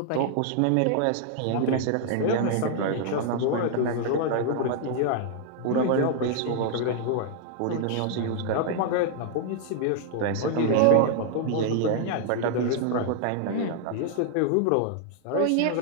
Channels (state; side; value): different; both; correlation 0.00